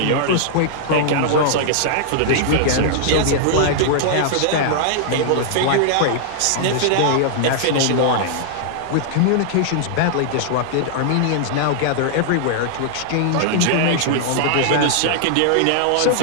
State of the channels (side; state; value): both; different; correlation -0.01